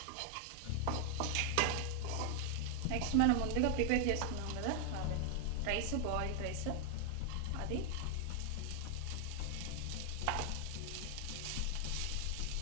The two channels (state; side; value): different; both; correlation 0.00